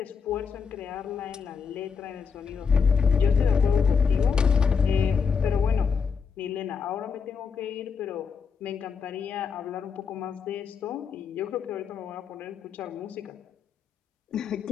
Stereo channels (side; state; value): right; quieter; 6.0 dB